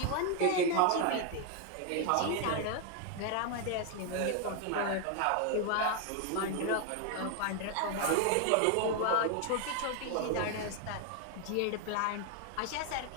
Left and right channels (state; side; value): different; both; correlation 0.01